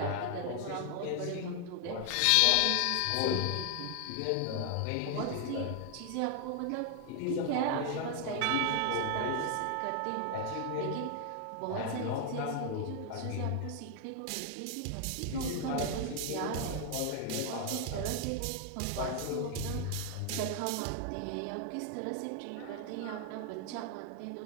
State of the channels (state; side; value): different; both; correlation 0.00